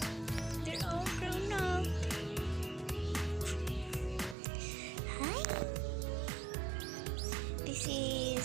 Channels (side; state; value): left; drops out; at 4.4 s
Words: They're all grown up. Hi! This